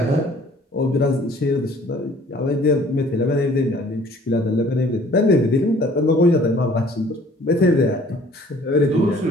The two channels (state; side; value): normal; both; correlation 0.54